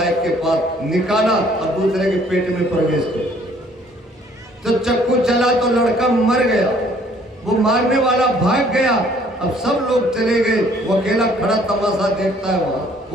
एक के पास, निकाला और दूसरे के पेट में प्रवेश किया। तो चक्कू चला तो लड़का मर गया, वो मारने वाला भाग गया। अब सब लोग चले गए, वो अकेला खड़ा तमाशा देखता है वहां,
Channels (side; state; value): both; normal; correlation 0.60